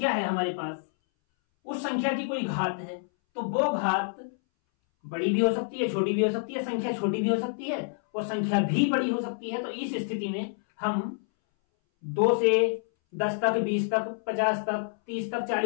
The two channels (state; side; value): silent; right; 59 dB below the other